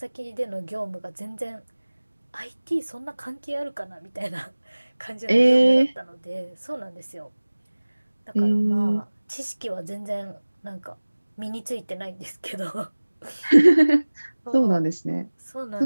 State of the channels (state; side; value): inverted; both; correlation -1.00